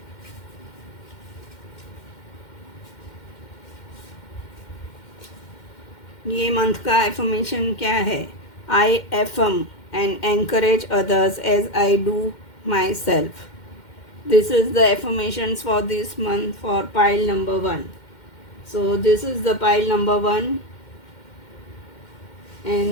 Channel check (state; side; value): late; right; 2.1 ms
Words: ये मंथ का एफर्मेशन क्या है? आई affirm and encourage others as I do myself. This is the affirmations for this month for pile number 1. So this is the pile number 1